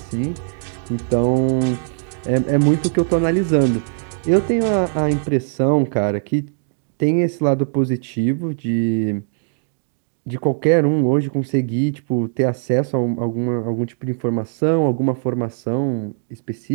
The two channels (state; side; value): silent; left; 66 dB below the other